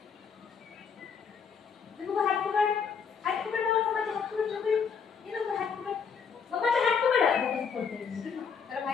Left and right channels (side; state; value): right; quieter; 6.2 dB